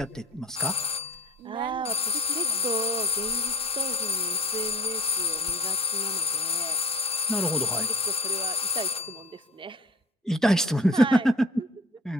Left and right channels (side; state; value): both; normal; correlation 0.49